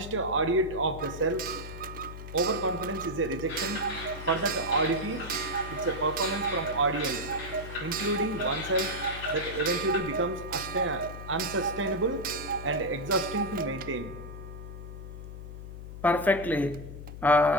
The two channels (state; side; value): noise; left; hum, 11 dB below the sound